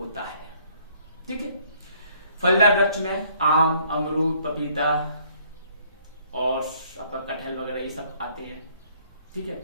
है। ठीक है, फलदार वृक्ष में आम, अमरूद, पपीता और आपका कटहल वगैरह ये सब आते हैं। ठीक है,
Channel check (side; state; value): both; inverted; correlation -0.63